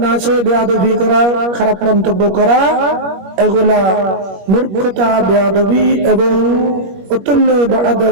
না চেয়ে বেয়াদবি করা, খারাপ মন্তব্য করা, এগুলা মূর্খতা, বেয়াদবি এবং উতুল্লি বা'দা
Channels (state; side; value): late; left; 21 ms